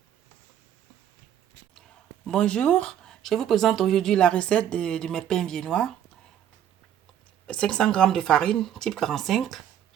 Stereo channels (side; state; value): left; quieter; 10.3 dB